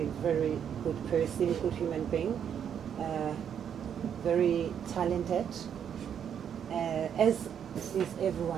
very good person, good human being. Very talented, as is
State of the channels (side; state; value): left; quieter; 8.5 dB